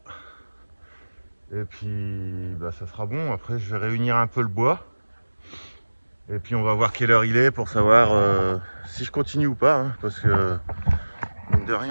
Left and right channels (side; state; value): both; inverted; correlation -1.00